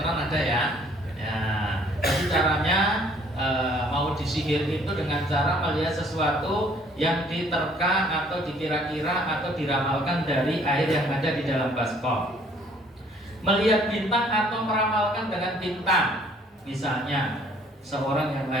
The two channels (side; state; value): both; normal; correlation 0.59